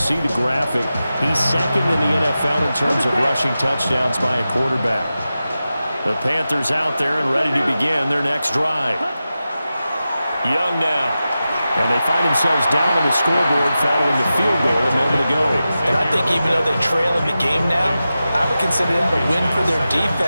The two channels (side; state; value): both; inverted; correlation -0.93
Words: the graphic. He's 2nd in the NFL in terms of rushing touchdowns by a quarterback. The Panthers out there and ready to begin their next drive. Young now. And they find themselves down on the scoreboard following the field goal a moment ago. And I think even though they trail in the game now, I would consider that a win for their